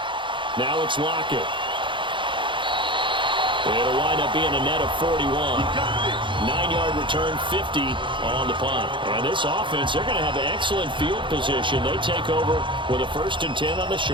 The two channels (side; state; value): left; late; 0.24 ms